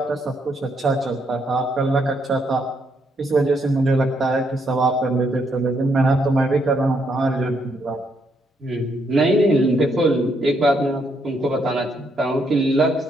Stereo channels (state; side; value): normal; both; correlation 0.75